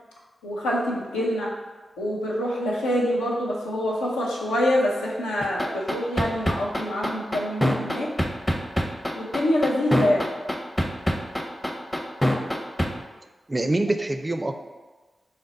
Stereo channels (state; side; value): normal; both; correlation 0.89